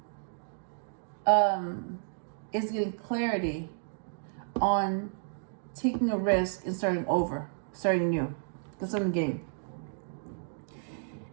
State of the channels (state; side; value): silent; left; digital silence